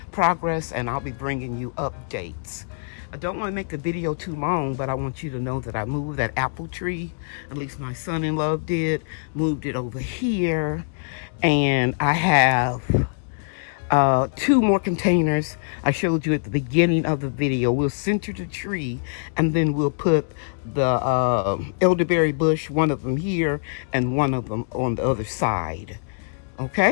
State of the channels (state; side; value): silent; right; digital silence